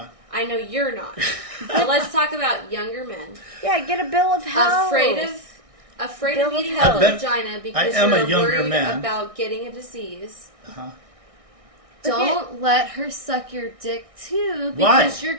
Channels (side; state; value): left; late; 1.6 ms